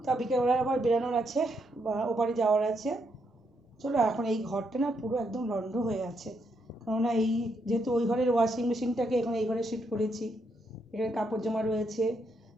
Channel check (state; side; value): normal; both; correlation 0.77